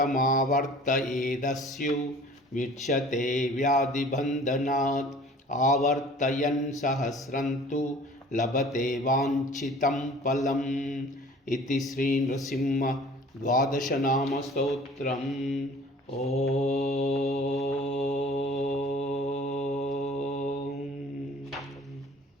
विच्यते व्याधिबन्धनात् आवर्तयन् सहस्रं तु लभते वाञ्छितं फलम् इति श्री नृसिंह द्वादश नाम स्तोत्रम्।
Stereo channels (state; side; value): normal; both; correlation 0.48